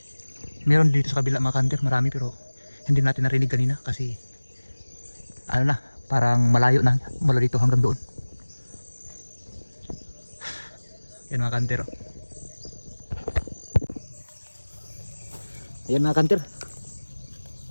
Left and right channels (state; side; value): inverted; both; correlation -1.00